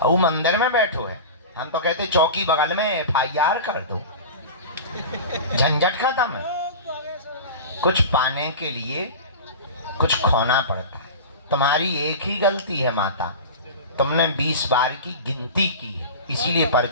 वो मंदिर में बैठो है, हम तो कहते चौकी बगल में FIR कर दो, झंझट खत्म है। कुछ पाने के लिए कुछ खोना पड़ता है। तुम्हारी एक ही गलती है माता, तुमने 20 बार की गिनती की है, इसीलिए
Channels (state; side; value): inverted; both; correlation -0.31